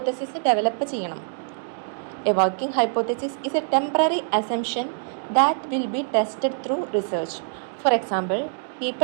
develop ചെയ്യണം. A working hypothesis is A temporary assumption that will be tested through research. For example,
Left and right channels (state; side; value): silent; left; digital silence